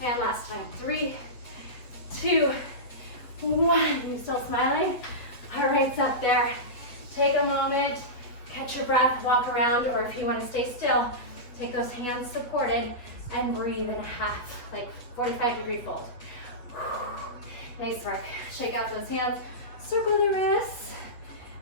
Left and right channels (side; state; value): right; late; 8.4 ms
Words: last time. 3, 2, 1. You still smiling? All right, it's up there. Take a moment, catch your breath, walk around, or if you want to stay still, take those hands supported and breathe in a half, like 45-degree fold. Nice work. Shake out those hands, circle the wrists.